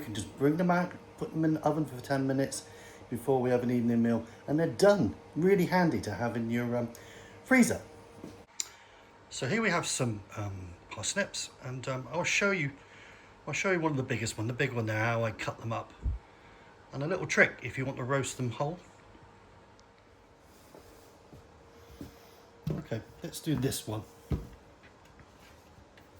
just bring them out, put them in the oven for 10 minutes before we have an evening meal, and they're done. Really handy to have in your freezer. So here we have some parsnips, and I'll show you one of the biggest one, the big one there, how I cut them up. And a little trick if you want to roast them whole. Okay, let's do this one.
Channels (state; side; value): identical; both; correlation 1.00